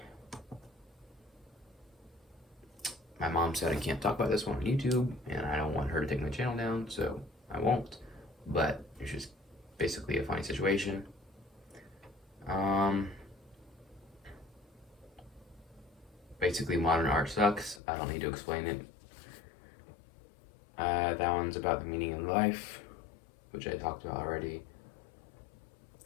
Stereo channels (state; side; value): drops out; right; at 17.8 s